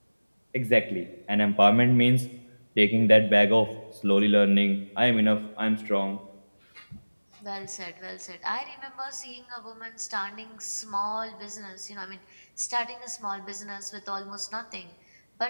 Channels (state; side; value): inverted; both; correlation -1.00